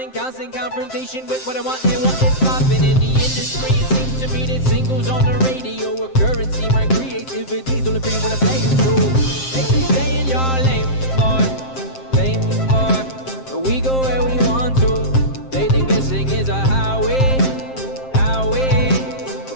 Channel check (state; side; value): late; right; 7.6 ms